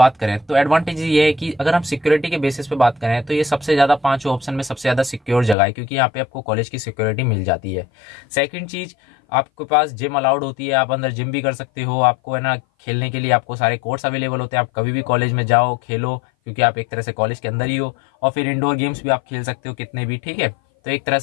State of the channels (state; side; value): drops out; right; at 5.6 s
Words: करें तो एडवांटेज ये है कि अगर हम सिक्योरिटी के बेसिस पे बात करें तो ये सबसे ज़्यादा 5 ऑप्शन में सबसे ज़्यादा सिक्योर जगह है, क्योंकि यहाँ पे आपको कॉलेज की सिक्योरिटी मिल जाती है। सेकंड चीज़, आपके पास जिम अलाउड होती है, आप अंदर जिम भी कर सकते हो। आपको है ना खेलने के लिए आपको सारे कोर्ट्स अवेलेबल होते हैं, आप कभी भी कॉलेज में जाओ खेलो, क्योंकि आप एक तरह से कॉलेज के अंदर ही हो। और फिर इंडोर गेम्स भी आप खेल सकते हो कितने भी, ठीक है। तो एक तरह